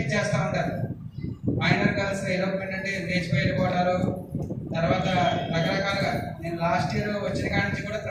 చేస్తూ ఉంటారు. మైనర్ గర్ల్స్ ఎలోప్మెంట్ అంటే లేచిపోయి వెళ్ళిపోవడాలు, తర్వాత రకరకాలుగా. నేను లాస్ట్ ఇయర్ వచ్చిన కాడి నుంచి కూడా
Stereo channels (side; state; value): both; identical; correlation 1.00